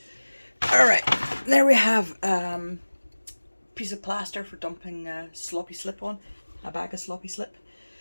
All right, there we have piece of plaster for dumping sloppy slip on, a bag of sloppy slip.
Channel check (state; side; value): inverted; both; correlation -1.00